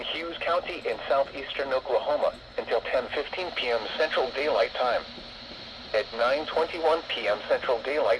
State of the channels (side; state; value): both; identical; correlation 1.00